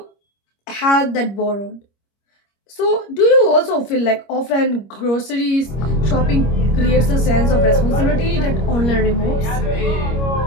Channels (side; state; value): right; late; 25 ms